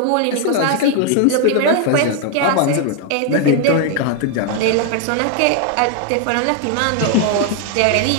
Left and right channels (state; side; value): different; both; correlation 0.00